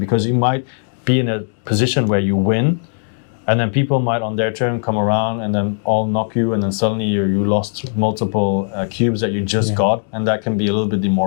you might be in a position where you win, and then people might on their turn come around and then all knock you, and then suddenly you lost multiple cubes that you just got, and that can be a little bit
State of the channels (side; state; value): right; silent; digital silence